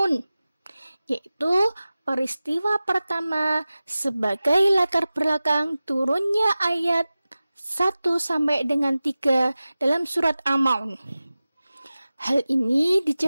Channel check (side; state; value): both; inverted; correlation -0.96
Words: yaitu peristiwa pertama sebagai latar belakang turunnya ayat 1 sampai dengan 3 dalam surat Al-Ma'un. Hal ini